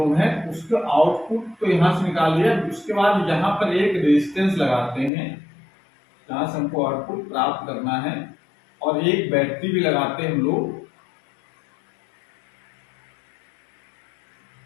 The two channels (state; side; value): drops out; right; at 5.1 s